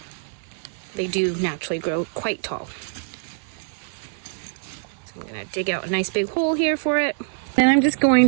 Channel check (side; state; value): left; silent; digital silence